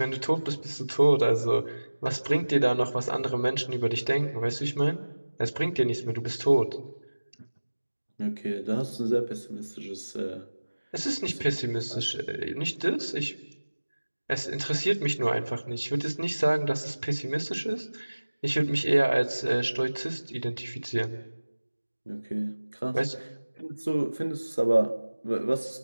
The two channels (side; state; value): both; inverted; correlation -1.00